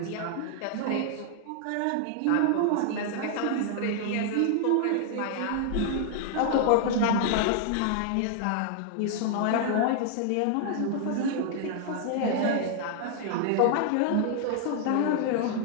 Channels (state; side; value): different; both; correlation 0.00